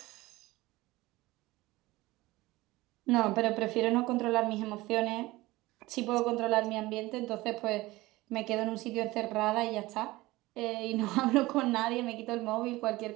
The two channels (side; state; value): left; quieter; 19.5 dB